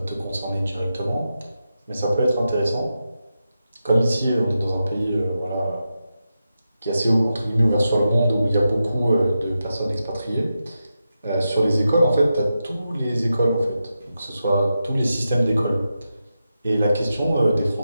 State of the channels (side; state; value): both; inverted; correlation -0.89